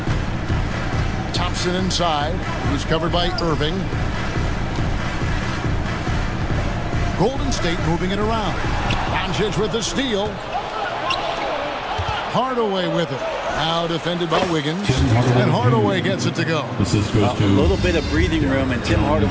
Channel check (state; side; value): identical; both; correlation 1.00